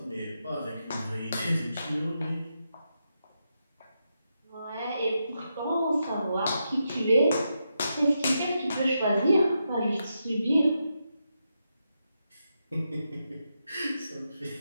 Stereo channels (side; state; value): both; inverted; correlation -0.85